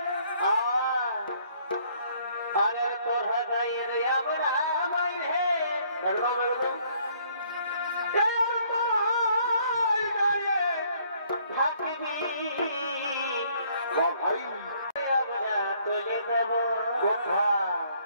আরে তোরা যাই রে আমরা হে একদম একদম ভাই আমরা তুলে দেব কথা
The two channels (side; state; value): both; inverted; correlation -0.63